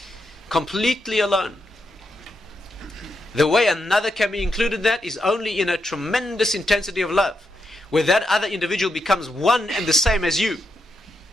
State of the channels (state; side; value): normal; both; correlation 0.83